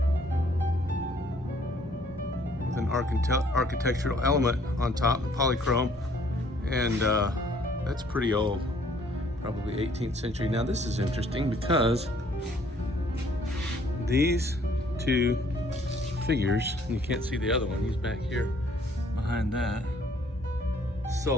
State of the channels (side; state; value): both; normal; correlation 0.61